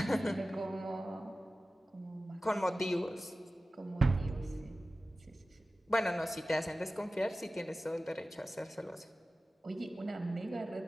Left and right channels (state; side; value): normal; both; correlation 0.95